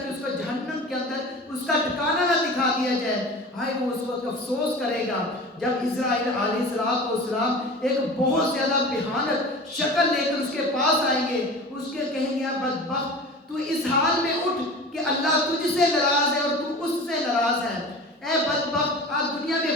اس کو جہنم کے اندر اس کا ٹھکانہ نہ دکھا دیا جائے۔ ہائے وہ اس وقت افسوس کرے گا جب اسرائیل علیہ السلام ایک بہت زیادہ بھیانک شکل لے کر اس کے پاس آئیں گے، اس کے کہیں گے بدبخت تو اس حال میں اٹھ کہ اللہ تجھ سے ناراض ہے اور تو اس سے ناراض ہے، اے بدبخت آج دنیا میں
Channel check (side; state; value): both; normal; correlation 0.36